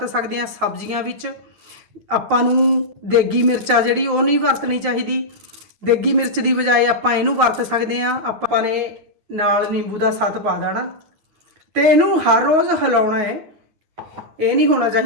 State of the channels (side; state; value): left; late; 9.4 ms